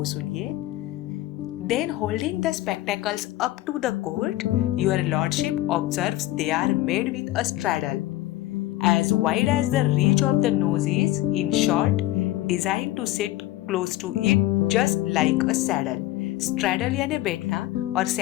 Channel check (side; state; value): right; quieter; 16.0 dB